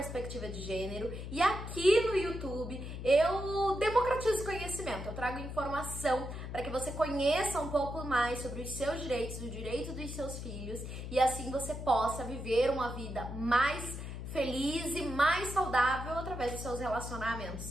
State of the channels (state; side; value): noise; left; hum, 7 dB below the sound